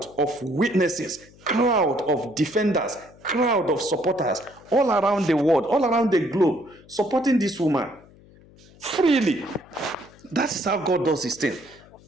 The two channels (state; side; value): noise; left; hum, 25 dB below the sound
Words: of witnesses, crowd of defenders, crowd of supporters all around the world, all around the globe, supporting this woman freely. That's how God does his thing.